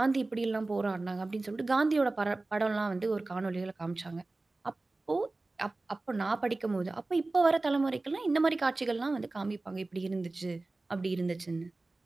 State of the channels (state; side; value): quieter; left; 3.2 dB